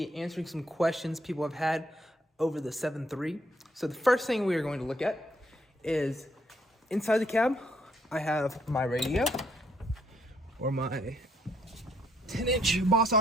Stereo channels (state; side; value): normal; both; correlation 0.70